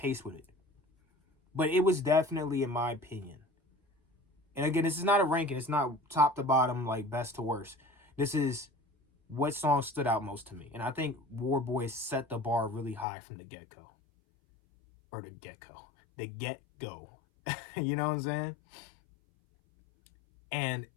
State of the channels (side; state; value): right; drops out; at 13.1 s